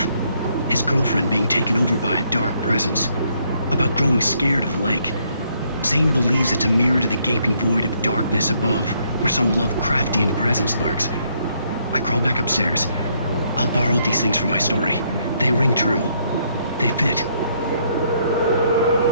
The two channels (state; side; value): inverted; both; correlation -0.71